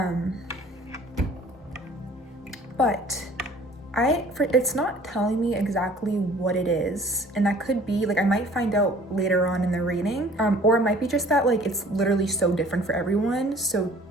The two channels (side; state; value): both; normal; correlation 0.51